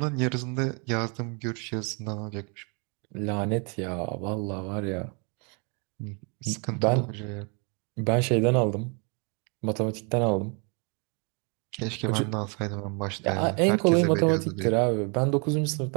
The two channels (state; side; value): quieter; left; 34.8 dB